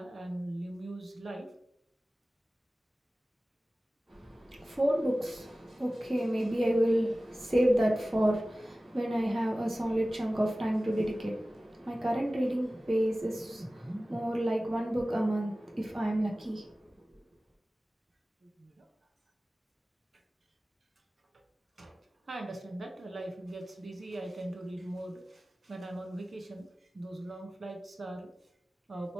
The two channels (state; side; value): normal; both; correlation 0.97